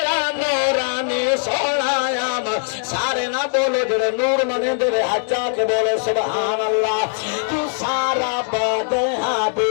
नूरानी सोनाया मान सारे ना बोलो जड़े नूर मने तेरे हजा के बोले सुभान अल्लाह तू सारा बदे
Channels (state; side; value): silent; right; 66 dB below the other